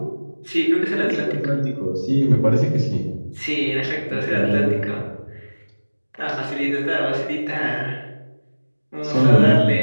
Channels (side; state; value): both; inverted; correlation -1.00